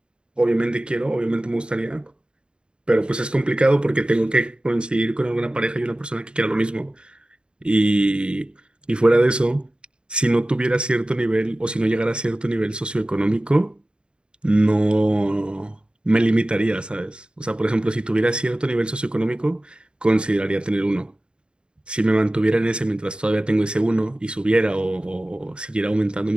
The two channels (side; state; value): left; late; 0.052 ms